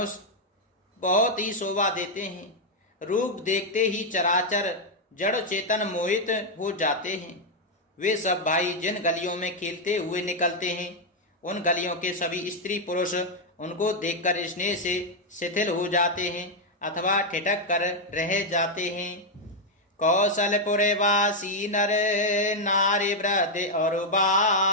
बहुत ही शोभा देते हैं। रूप देखते ही चराचर जड़ चेतन मोहित हो जाते हैं। वे सब भाई जिन गलियों में खेलते हुए निकलते हैं, उन गलियों के सभी स्त्री पुरुष उनको देखकर स्नेह से शिथिल हो जाते हैं अथवा ठिठक कर रह जाते हैं। कौशलपुर वासी नर नारी वृद्ध और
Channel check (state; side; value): normal; both; correlation 0.00